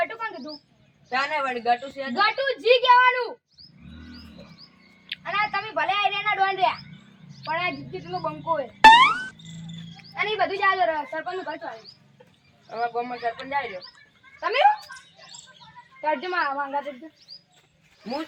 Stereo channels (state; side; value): identical; both; correlation 1.00